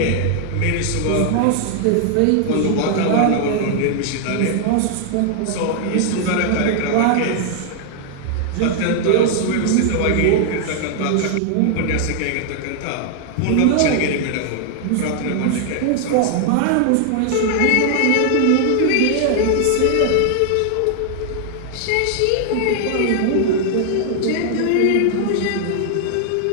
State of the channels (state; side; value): different; both; correlation 0.00